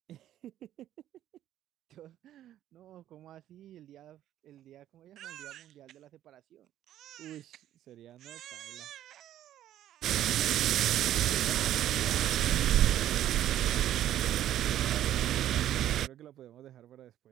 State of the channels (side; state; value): left; quieter; 12.1 dB